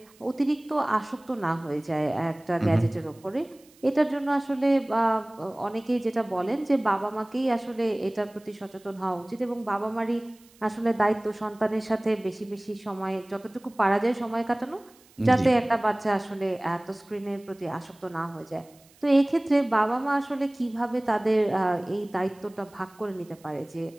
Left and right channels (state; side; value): noise; right; hiss, 28 dB below the sound